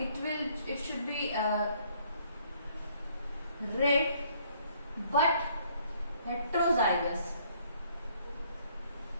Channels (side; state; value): both; inverted; correlation -0.64